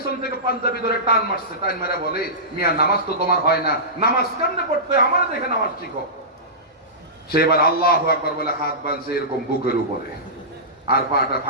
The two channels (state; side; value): normal; both; correlation -0.19